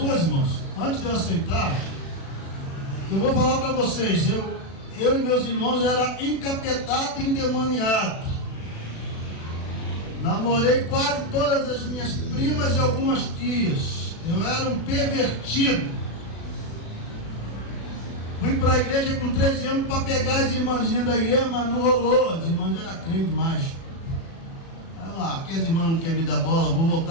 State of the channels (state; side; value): late; right; 36 ms